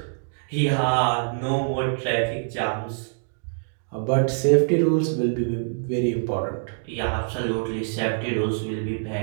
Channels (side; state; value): left; silent; digital silence